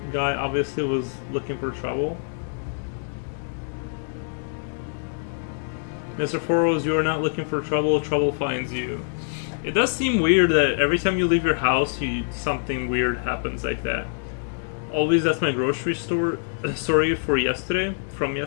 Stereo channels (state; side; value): silent; right; digital silence